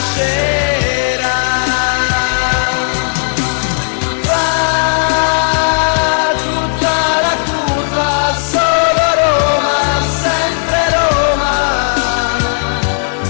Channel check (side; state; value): right; silent; digital silence